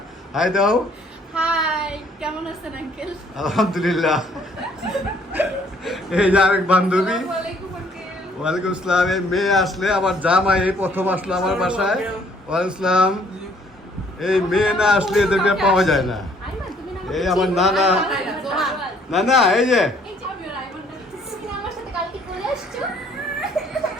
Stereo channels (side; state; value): both; normal; correlation 0.62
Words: হাই দাও। হাই, কেমন আছেন আঙ্কেল? আলহামদুলিল্লাহ। এই যে আরেক বান্ধবী। আসসালামু আলাইকুম আঙ্কেল। ওয়ালাইকুম আসসালাম। এই মেয়ে আসলে আমার জামাই এই প্রথম আসলো আমার বাসায়। ওয়ালাইকুম আসসালাম। এই মেয়ে না আসলে এদেরকে পাওয়া যায় না। আইমান, তুমি না এই আমার নানা, নানা এই যে এই যে আমি আইমান, তুমি আমার সাথে কালকে চলে আসছো?